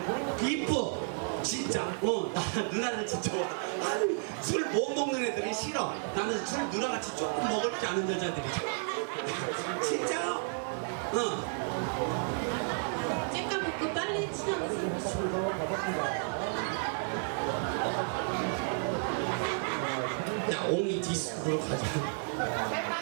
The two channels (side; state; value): left; silent; 56 dB below the other